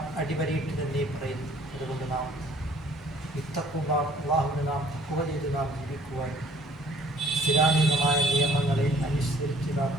അടിവരയിട്ട് തന്നെ പറയുന്നു. അതുകൊണ്ട് നാം അല്ലാഹുവിനെ നാം തഖ്വ ചെയ്ത് നാം ജീവിക്കുവാൻ, ഇസ്ലാമികമായ നിയമങ്ങളെ അനുസരിച്ച് നാം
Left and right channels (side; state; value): both; normal; correlation 0.58